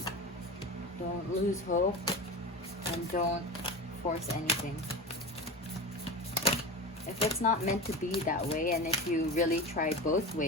lose hope, and don't force anything. If it's not meant to be that way, and if you really try both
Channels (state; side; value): normal; both; correlation 0.27